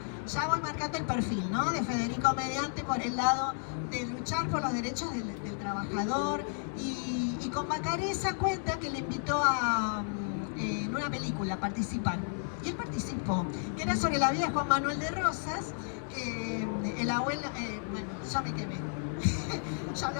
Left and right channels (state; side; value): silent; right; 56 dB below the other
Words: ya voy marcando el perfil, ¿no?, de Federico Mediante por el lado de luchar por los derechos del trabajador. Y con Bacareza cuenta que le invitó en una película a participar. Y él participó, que era sobre la vida de Juan Manuel de Rosas, que el abuelo, bueno, ya me quemé, ya